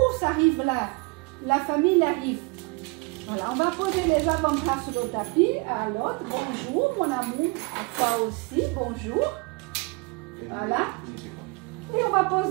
ça arrive là. La famille arrive. Voilà, on va poser les avant-bras sur le tapis. À l'autre, bonjour mon amour. À toi aussi, bonjour. Voilà. Et on va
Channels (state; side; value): quieter; left; 28.8 dB